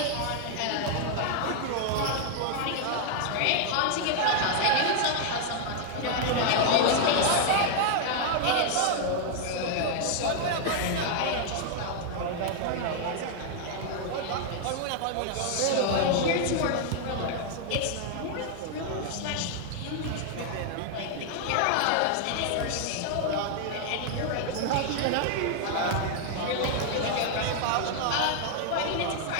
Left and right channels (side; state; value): both; different; correlation 0.00